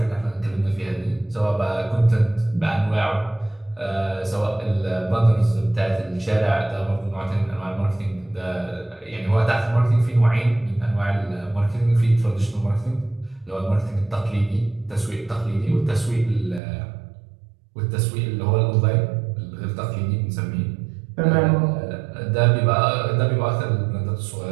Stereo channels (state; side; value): drops out; left; at 16.6 s